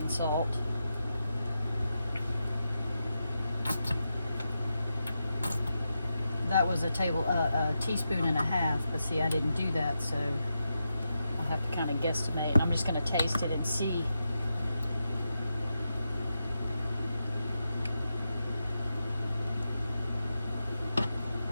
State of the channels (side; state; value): both; inverted; correlation -0.88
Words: salt, that was a teaspoon and a half, but see, I didn't do that, so I'll have to kind of guesstimate. I'm just going to taste it and see.